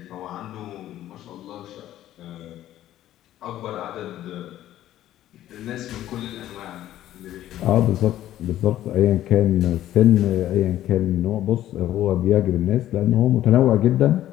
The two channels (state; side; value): quieter; right; 13.1 dB